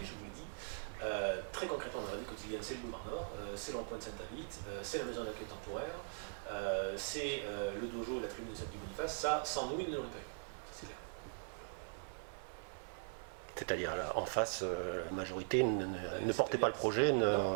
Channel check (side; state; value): left; silent; digital silence